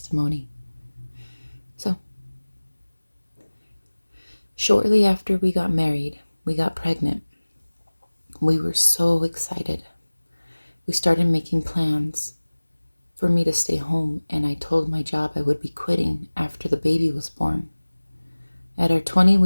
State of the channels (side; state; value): both; inverted; correlation -1.00